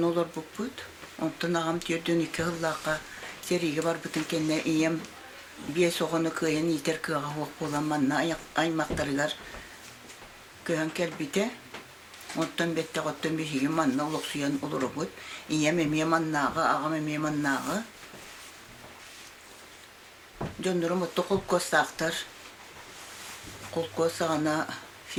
olur buput. Ondan ağam tiyordun iki hıllaka seriye bar bütün kendine iyem bir soğunu kıyan iter kığa hoq olan manna aymaktarıgar kıyan kelbite. Ondan bette qottan bir şey manna uluq suyan olur buput. İyem emiye mannağı, ağam emiye mannağı. Jondurum mutlu kol kostaqtar. Kol kostağına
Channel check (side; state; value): both; identical; correlation 1.00